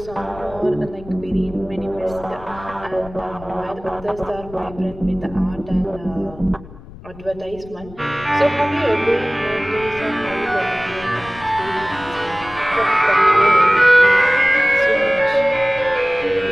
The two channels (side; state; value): left; noise; rumble, 18 dB below the sound